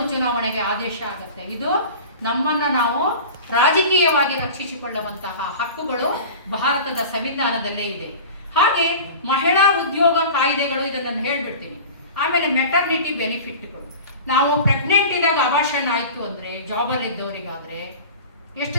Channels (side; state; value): both; inverted; correlation -0.36